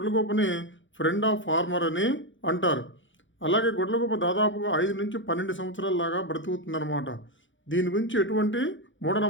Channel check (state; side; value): late; right; 0.56 ms